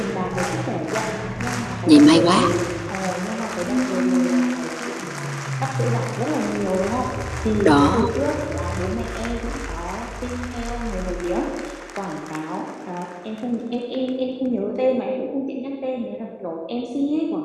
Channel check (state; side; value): identical; both; correlation 1.00